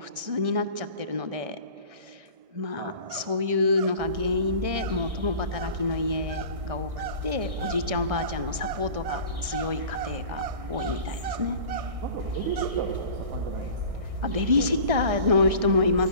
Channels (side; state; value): left; late; 1.6 ms